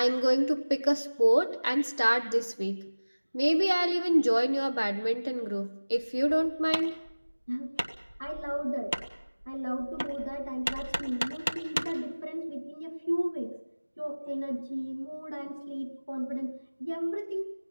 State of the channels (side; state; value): both; inverted; correlation -1.00